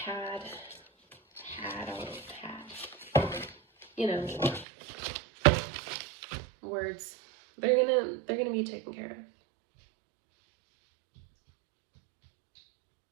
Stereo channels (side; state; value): left; drops out; at 4.7 s